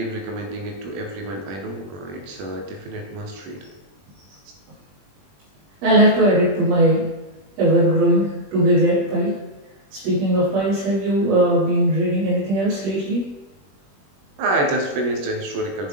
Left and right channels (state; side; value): late; left; 21 ms